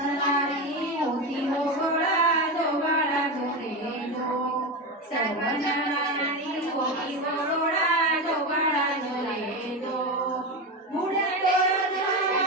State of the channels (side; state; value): both; normal; correlation 0.18